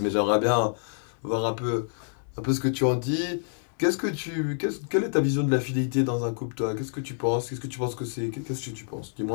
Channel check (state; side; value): silent; right; digital silence